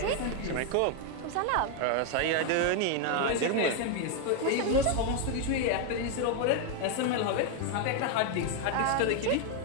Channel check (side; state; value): both; different; correlation 0.01